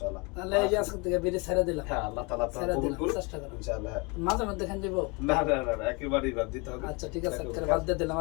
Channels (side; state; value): right; quieter; 28.8 dB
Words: চলা। তাহলে এই যে আজকে থেকে বিড়ি ছেড়ে দিলাম। হ্যাঁ, আল্লাহ তাআলা আপনাকে ছেড়ে কবুল দিলাম, করুন চেষ্টা করুন। ইনশাআল্লাহ। হ্যাঁ, মাঝে মধ্যে খান যাবো। না না না না, একেবারেই বাদ দিতে হবে। আচ্ছা ঠিক আছে, বাদ দিয়ে দিলাম